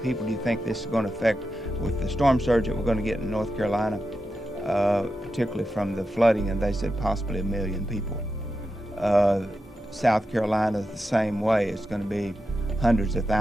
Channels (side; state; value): both; normal; correlation 0.88